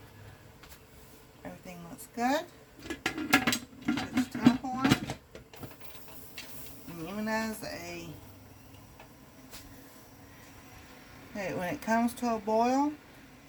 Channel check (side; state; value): both; identical; correlation 1.00